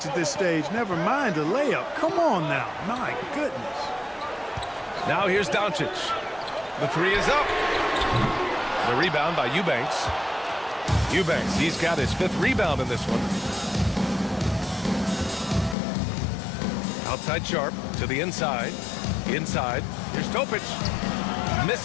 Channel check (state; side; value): drops out; right; at 15.8 s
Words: at this stage. Never mind a layup. Come on now. My goodness. Now here's Doncic. The 3 is up. The rebound by Eubanks. Eubanks, he's got his 5th rebound in this one. Outside Sharp to the inside. Inside. Here's Topic.